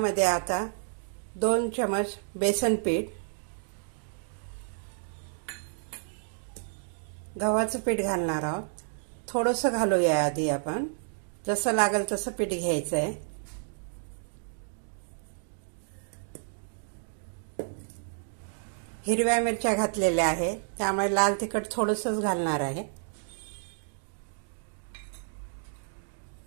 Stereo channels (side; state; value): left; silent; digital silence